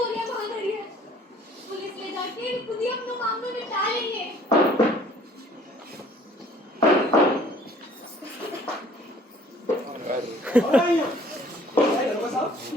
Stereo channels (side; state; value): both; normal; correlation 0.55